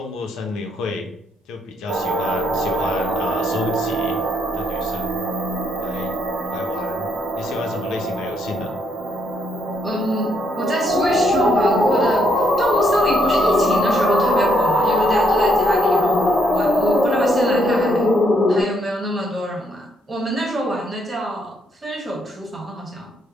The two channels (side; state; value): both; normal; correlation 0.73